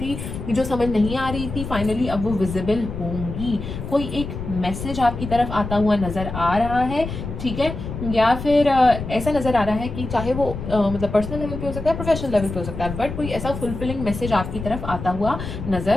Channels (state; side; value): noise; left; rumble, 7 dB below the sound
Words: जो समझ नहीं आ रही थी, फाइनली अब वो विजिबल होंगी। कोई एक मैसेज आपकी तरफ आता हुआ नजर आ रहा है, ठीक है, या फिर ऐसा नजर आ रहा है कि चाहे वो मतलब पर्सनल लेवल पे हो सकता है, प्रोफेशनल लेवल पे हो सकता है, बट कोई ऐसा फुलफिलिंग मैसेज आपकी तरफ आता हुआ